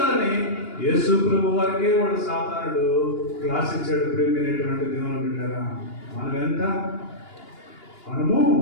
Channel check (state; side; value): late; right; 2.8 ms